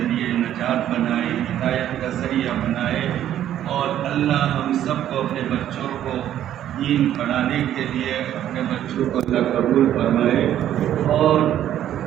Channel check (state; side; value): quieter; left; 11.4 dB